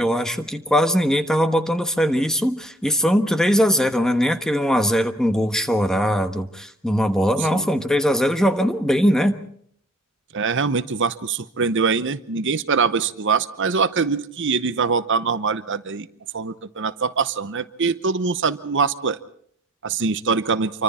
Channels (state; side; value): normal; both; correlation 0.51